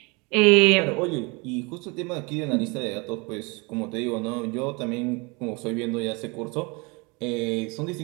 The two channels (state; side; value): quieter; left; 28.4 dB